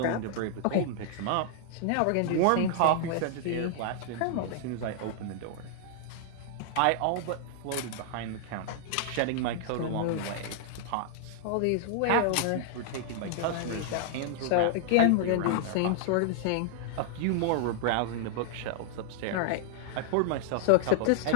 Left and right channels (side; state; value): both; different; correlation -0.01